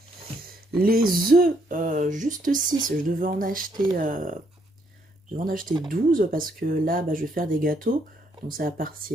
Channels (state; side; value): normal; both; correlation 0.72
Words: Les œufs, juste 6, je devais en acheter 12 parce que là, bah, je vais faire des gâteaux, donc ça va